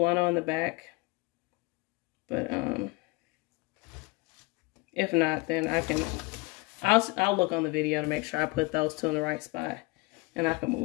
in the back. But if not, then I'll look on the video to make sure I put those 2 in the right spot, and I can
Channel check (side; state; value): right; quieter; 24.8 dB